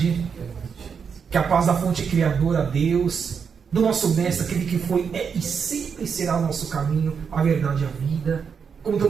Que a paz da fonte criadora, Deus, do nosso mestre, aquele que foi, é e sempre será o nosso caminho, a verdade e a vida, como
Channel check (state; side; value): quieter; left; 6.4 dB